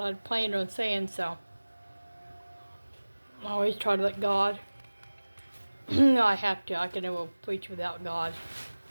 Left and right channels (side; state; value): both; inverted; correlation -1.00